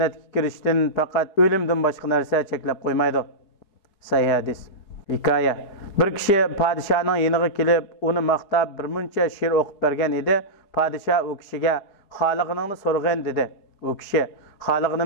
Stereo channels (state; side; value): late; right; 4.8 ms